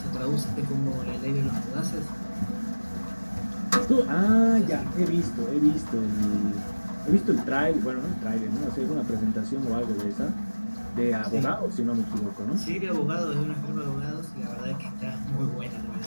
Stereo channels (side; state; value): both; inverted; correlation -1.00